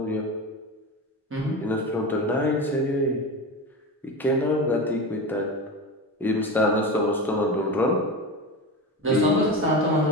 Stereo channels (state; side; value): normal; both; correlation 0.24